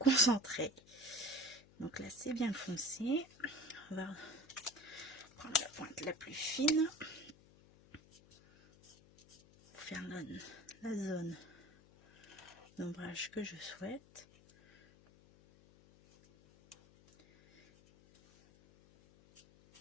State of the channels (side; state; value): left; noise; hum, 24 dB below the sound